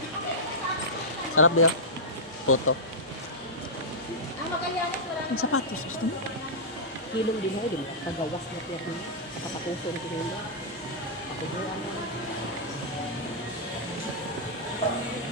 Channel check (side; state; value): both; normal; correlation -0.10